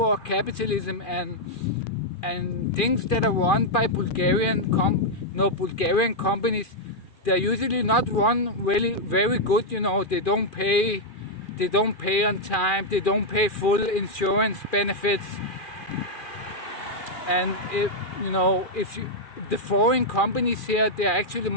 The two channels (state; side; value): late; right; 2.4 ms